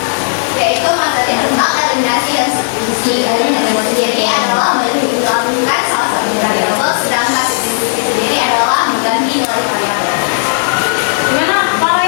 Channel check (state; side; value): silent; right; digital silence